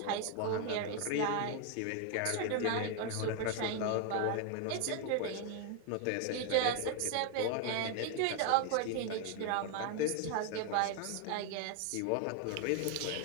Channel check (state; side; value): different; both; correlation 0.01